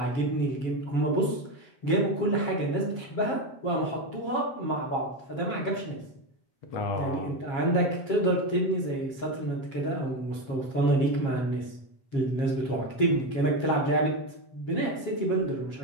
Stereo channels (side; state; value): right; late; 7.4 ms